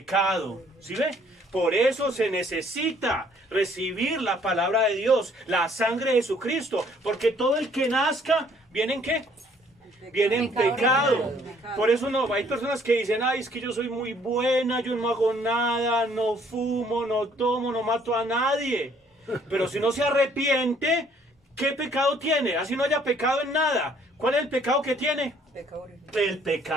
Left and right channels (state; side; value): normal; both; correlation 0.62